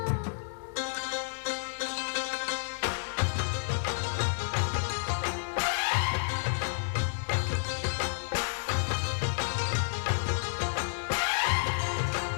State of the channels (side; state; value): right; silent; digital silence